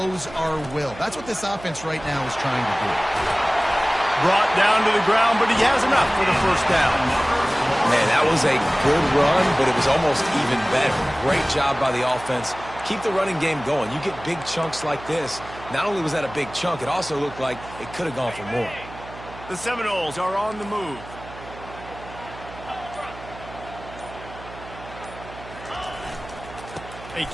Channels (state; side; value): noise; right; hum, 16 dB below the sound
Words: our will? That's what this offense right now is trying to do. Brought down to the ground, but he has enough for the first down. Man, that was a good run, but it was almost even better. Great job by the offense. Keep the running game going. You get big chunks like this. Not only was that a big chunk, it also looked like it could have gone for more. The Seminoles are on the move. They